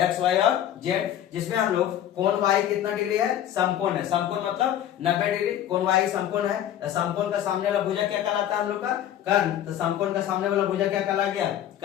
वाई और जेड, जिसमें हम लोग कोण वाई कितना डिग्री है समकोण है, समकोण मतलब 90 डिग्री, कोण वाई समकोण है, तो समकोण का सामने वाला भुजा क्या कहलाता है हम लोग का कर्ण, तो समकोण का सामने वाला भुजा क्या कहला गया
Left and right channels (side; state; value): right; quieter; 11.1 dB